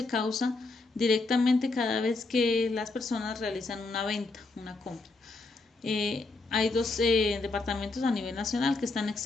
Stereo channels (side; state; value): right; quieter; 3.5 dB